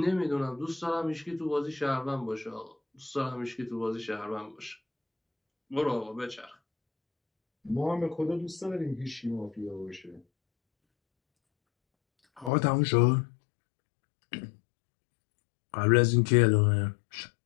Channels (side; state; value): right; drops out; at 12.5 s